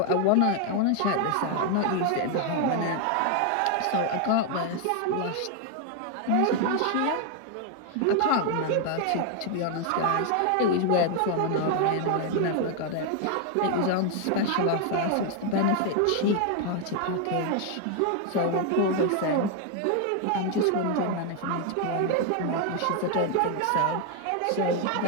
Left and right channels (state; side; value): different; both; correlation 0.00